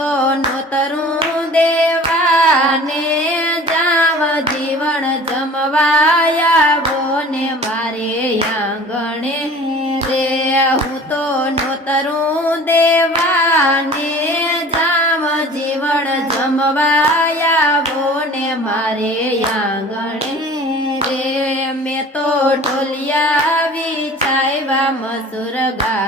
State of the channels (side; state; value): both; normal; correlation 0.44